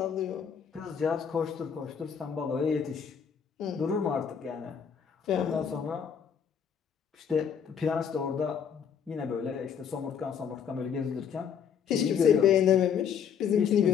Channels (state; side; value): quieter; right; 7.5 dB